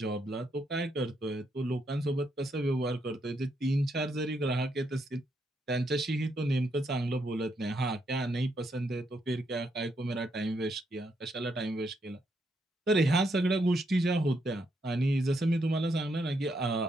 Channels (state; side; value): normal; both; correlation 0.78